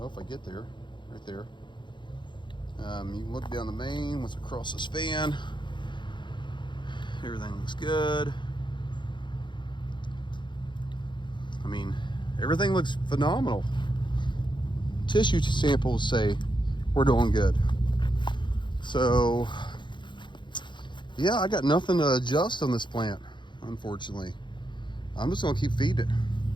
if I get there, right there. You can look down the main, what's across this fan. Everything looks good. I mean, everything looks phenomenal. Tissue samples say we're doing good. So, yeah, I got nothing to adjust on this plant, unfortunately. I'm just gonna keep feeding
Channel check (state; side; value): late; right; 0.23 ms